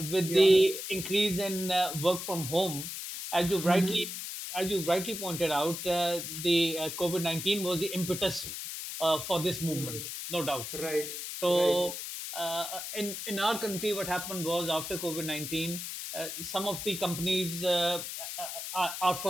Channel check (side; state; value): left; noise; hiss, 6 dB below the sound